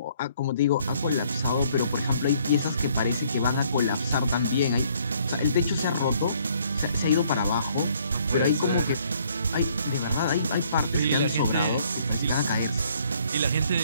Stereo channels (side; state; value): both; inverted; correlation -0.64